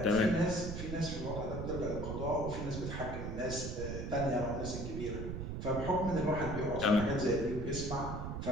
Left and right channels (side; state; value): right; noise; rumble, 5 dB below the sound